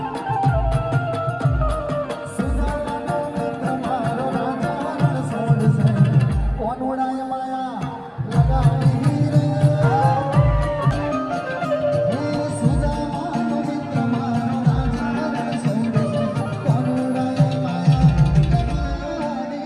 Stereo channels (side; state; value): both; identical; correlation 1.00